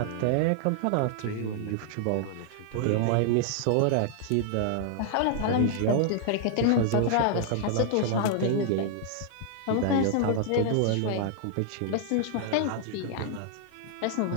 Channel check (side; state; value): both; different; correlation -0.01